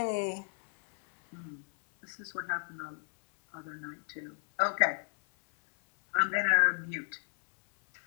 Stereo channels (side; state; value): right; silent; 56 dB below the other